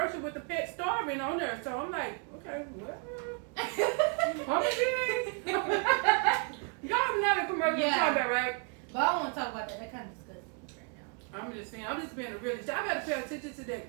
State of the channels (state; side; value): quieter; left; 38.9 dB